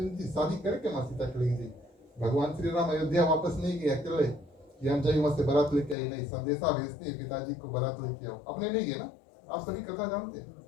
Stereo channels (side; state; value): right; drops out; at 6.0 s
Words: जी शादी करके माँ सीता चली गई। भगवान श्री राम अयोध्या वापस नहीं गए अकेले कि हम जाइए वहां से बारात लेके आई, नहीं, संदेशा भेजते हैं पिताजी को बारात लेके आओ, अपने नहीं गए ना, आप सभी कथा जानते हैं,